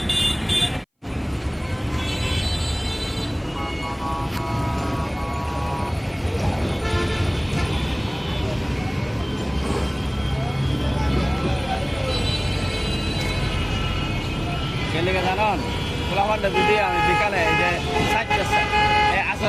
গেলে জানান পোলাপানটা যদি আমি বিকালে এই যে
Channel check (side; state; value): both; identical; correlation 1.00